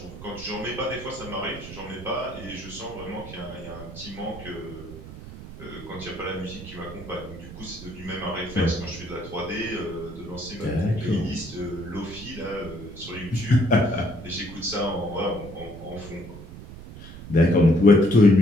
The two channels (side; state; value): right; noise; rumble, 13 dB below the sound